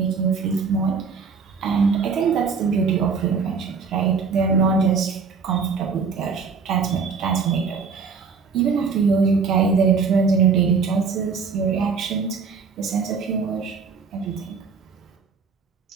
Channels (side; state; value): left; quieter; 5.3 dB